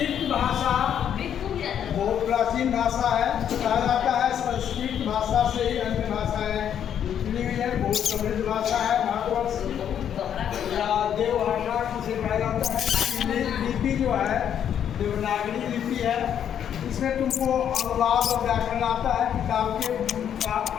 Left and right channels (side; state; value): right; quieter; 9.2 dB